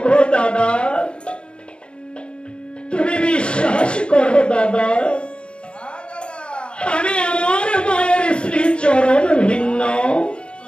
দাদা, তুমি বিশ্বাস করো দাদা, আমি আমার মায়ের শ্রী চরণ ভিন্ন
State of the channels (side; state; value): right; late; 0.054 ms